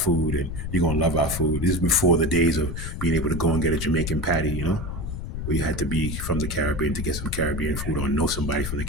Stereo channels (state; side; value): noise; left; rumble, 5 dB below the sound